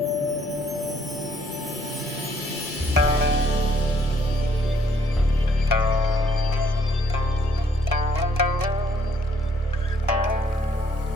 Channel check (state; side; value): normal; both; correlation 0.66